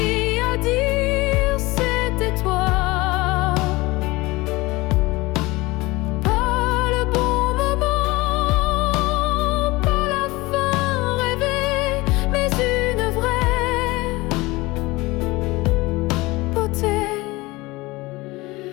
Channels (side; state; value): right; quieter; 21.6 dB